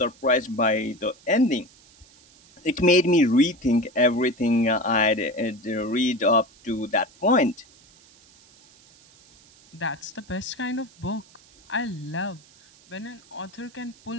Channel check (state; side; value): noise; right; hiss, 27 dB below the sound